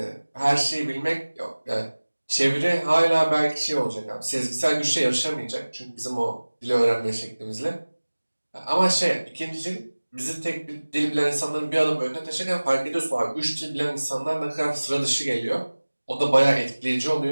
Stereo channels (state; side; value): inverted; both; correlation -1.00